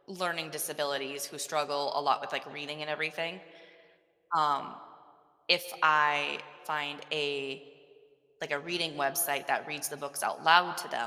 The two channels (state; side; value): identical; both; correlation 1.00